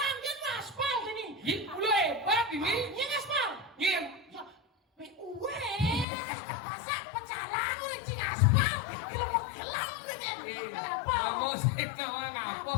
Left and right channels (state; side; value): drops out; right; at 6.1 s